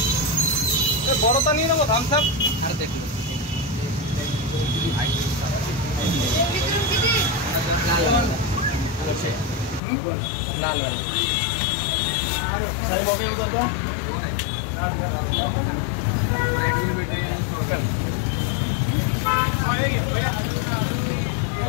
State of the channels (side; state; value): right; drops out; at 9.8 s